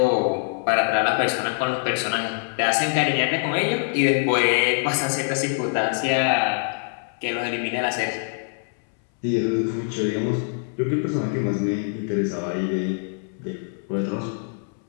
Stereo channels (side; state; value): right; silent; 63 dB below the other